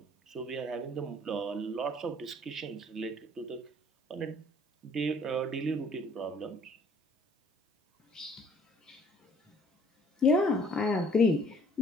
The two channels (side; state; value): both; normal; correlation 0.58